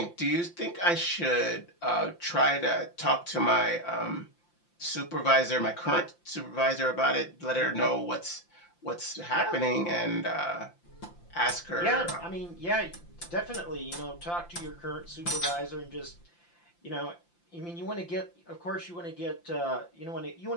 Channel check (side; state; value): right; late; 5.8 ms